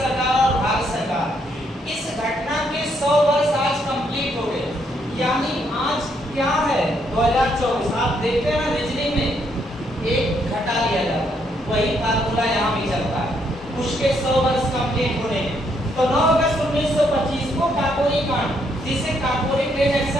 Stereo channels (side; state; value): both; normal; correlation 0.73